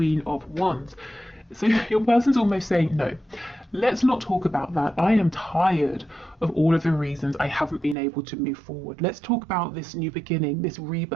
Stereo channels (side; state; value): left; drops out; at 8.0 s